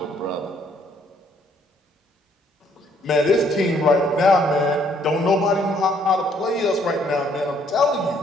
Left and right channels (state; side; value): normal; both; correlation 0.66